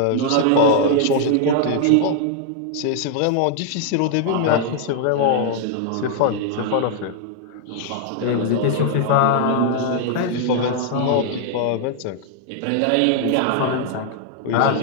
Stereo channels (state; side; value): different; both; correlation 0.00